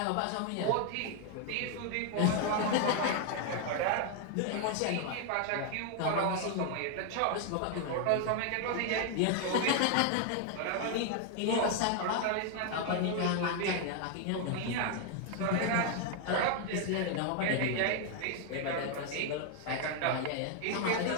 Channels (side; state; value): both; different; correlation 0.00